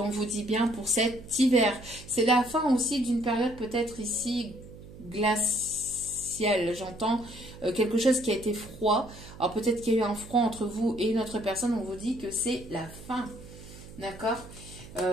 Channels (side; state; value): right; noise; hum, 17 dB below the sound